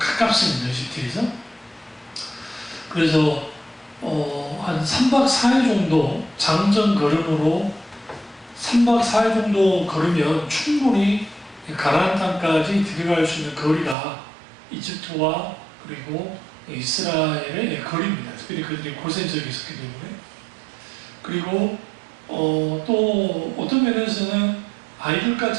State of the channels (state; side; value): drops out; left; at 14.0 s